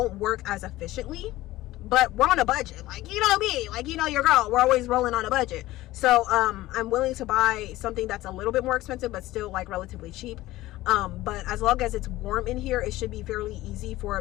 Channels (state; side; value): quieter; right; 17.0 dB